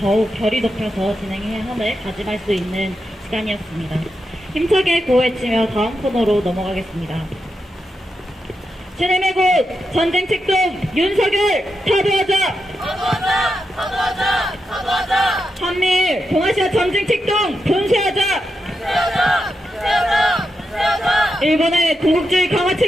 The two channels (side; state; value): both; normal; correlation 0.86